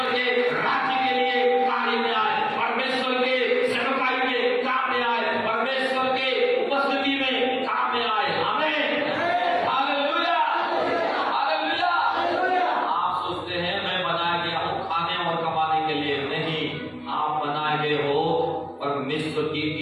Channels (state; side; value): identical; both; correlation 1.00